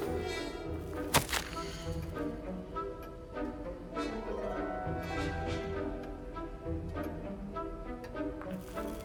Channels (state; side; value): identical; both; correlation 1.00